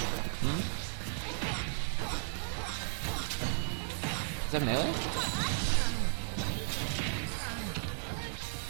Is that melee?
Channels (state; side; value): silent; left; digital silence